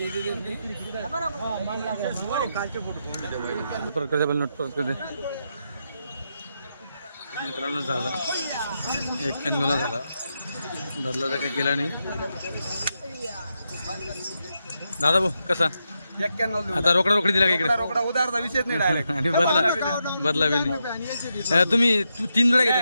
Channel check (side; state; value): both; inverted; correlation -0.84